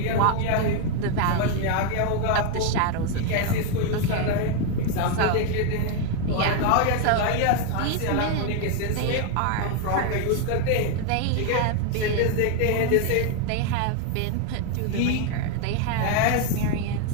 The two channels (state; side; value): different; both; correlation 0.01